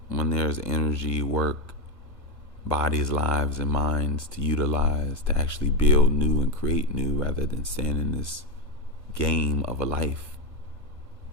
When there's energy, work, bodies, lives, and minds to utilize to actually build new and create new, rather than stand in this game of a life.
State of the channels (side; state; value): right; late; 1.2 ms